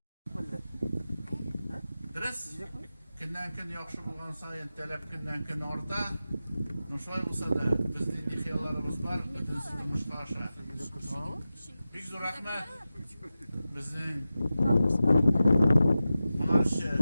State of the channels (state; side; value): inverted; both; correlation -0.94